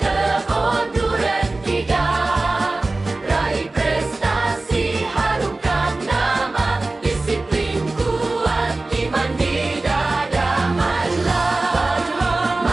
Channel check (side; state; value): left; quieter; 3.1 dB